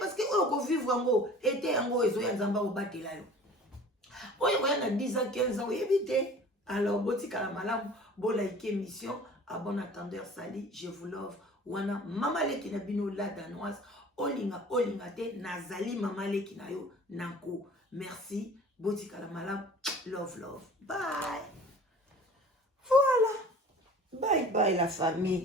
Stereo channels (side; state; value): both; normal; correlation 0.45